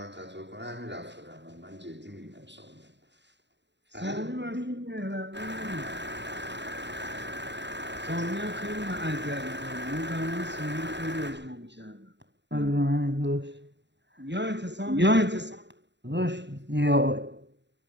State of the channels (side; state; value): left; late; 0.52 ms